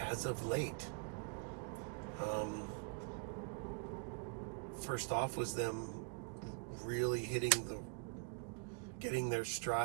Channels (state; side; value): quieter; left; 34.2 dB